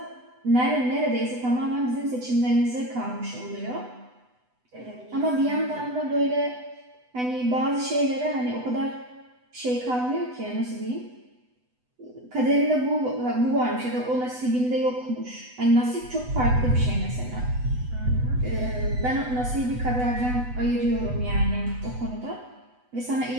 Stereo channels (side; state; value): left; late; 8.0 ms